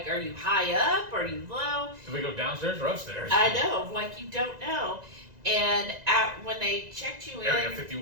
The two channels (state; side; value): late; left; 1.9 ms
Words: are you high up, are you low? Do we go downstairs or upstairs? I know, like you don't know. And when they checked you Area in,